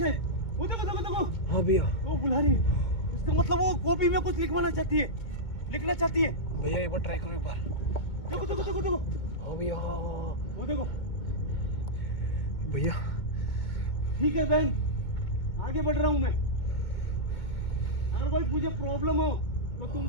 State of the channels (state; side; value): late; right; 2.2 ms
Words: वो देखो देखो देखो। हाँ भैया वो बुला रही है, इसका मतलब वो कॉपी में कुछ लिखवाना चाहती है, लिखना चाहती है। भैया एक बार ट्राई करो एक बार। देखो देखो देखो देखो। हाँ भैया वो देखो भैया। ठीक है बहन, आगे बढ़ रहा हूँ मैं। अगर कोई मुझे प्रॉब्लम हो तो तुम